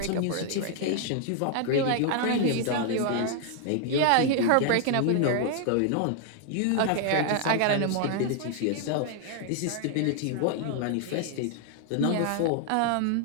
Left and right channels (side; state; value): both; different; correlation 0.00